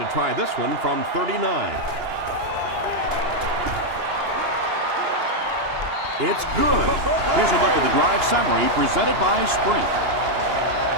try this one from 39. It's good. Here's a look at the drive summary presented by Sprint.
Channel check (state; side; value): late; left; 2.9 ms